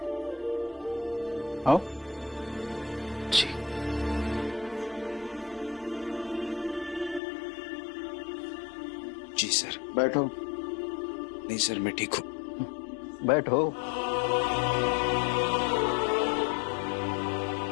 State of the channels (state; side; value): drops out; right; at 7.2 s